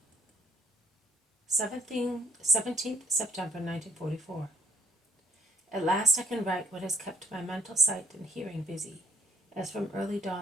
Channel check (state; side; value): normal; both; correlation 0.59